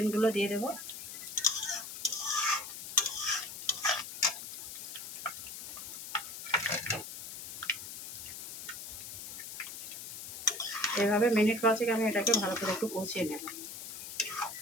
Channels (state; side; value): noise; left; hiss, 9 dB below the sound